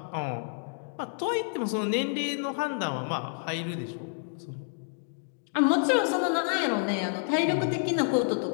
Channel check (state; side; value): silent; right; digital silence